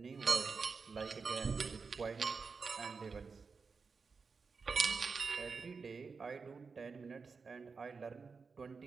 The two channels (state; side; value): quieter; left; 4.9 dB